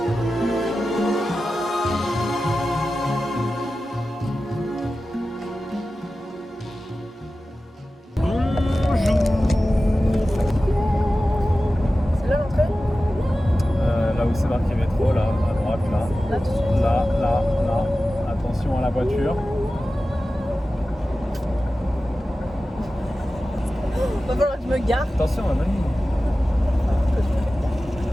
C'est là l'entrée? Là où c'est marqué métro, là, à droite, là. Là, tout de suite. Là. Attention à la voiture. Va falloir que je me gare. Attention à la ligne.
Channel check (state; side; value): normal; both; correlation 0.95